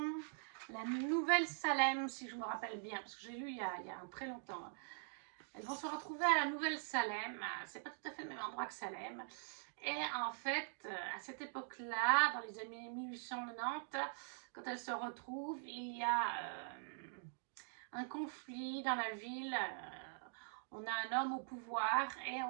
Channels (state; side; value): silent; left; digital silence